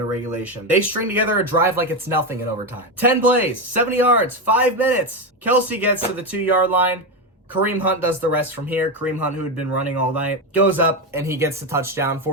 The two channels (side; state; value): both; normal; correlation 0.12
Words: of regulation. They string together a drive like it's nothing in overtime. 10 plays, 70 yards, 5 minutes. Kelsey gets to the 2-yard line. Kareem Hunt does the rest from here. Kareem Hunt, who had been running all night, goes up and he gets the touchdown